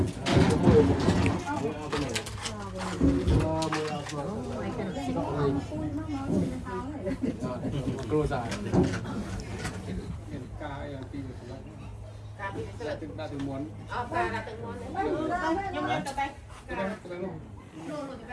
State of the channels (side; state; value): both; identical; correlation 1.00